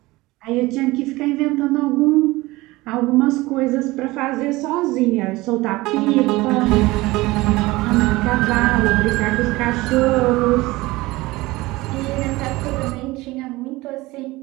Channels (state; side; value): quieter; left; 20.3 dB